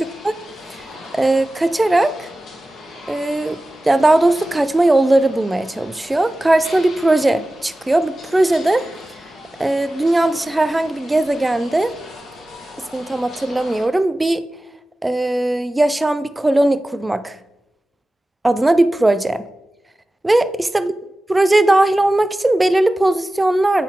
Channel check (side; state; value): both; normal; correlation 0.96